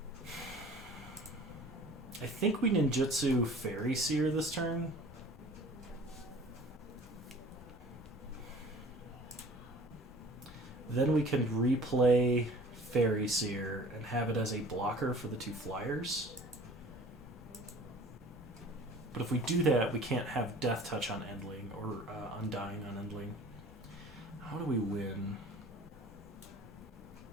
I think we ninjutsu Fairy Seer this turn. Then we can replay Fairy Seer and have it as a blocker for the 2 flyers. But if we do that, we can't have Death Touch on Endling or Undying on Endling. How do we win?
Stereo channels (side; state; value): both; normal; correlation 0.46